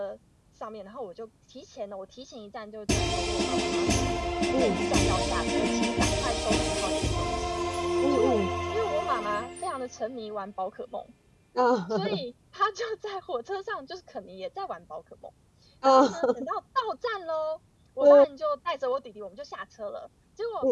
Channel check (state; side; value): identical; both; correlation 1.00